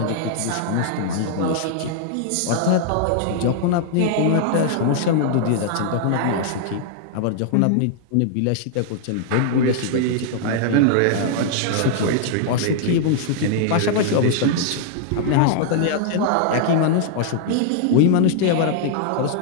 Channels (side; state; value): both; different; correlation -0.01